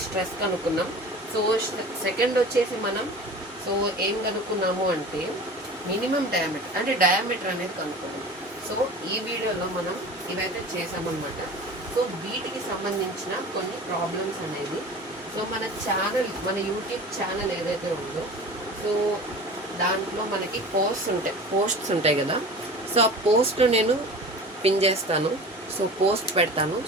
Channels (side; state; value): both; normal; correlation 0.38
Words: స్ట్రెస్ కనుక్కున్నాం. సో సెకండ్ వచ్చేసి మనం సో ఏం కనుక్కున్నాము అంటే మినిమం డయామీటర్ అంటే డయామీటర్ అనేది కనుక్కున్నాం. సో ఈ వీడియోలో మనం ఇవైతే చేసామన్నమాట. సో వీటికి సంబంధించిన కొన్ని ప్రాబ్లమ్స్ అనేది సో మన ఛానల్ మన యూట్యూబ్ ఛానల్ ఏదైతే ఉందో సో దాంట్లో మనకి పోస్ట్స్ ఉంటాయి కదా. సో ఆ పోస్ట్ నేను పిన్ చేస్తాను, సో పోస్ట్ పెడతాను.